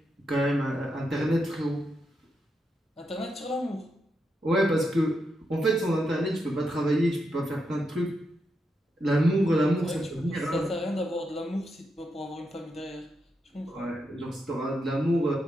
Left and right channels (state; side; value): normal; both; correlation 0.84